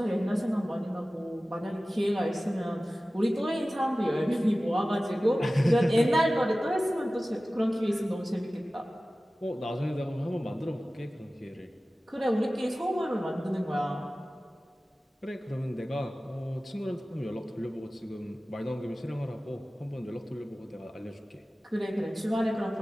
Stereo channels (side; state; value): both; normal; correlation 0.96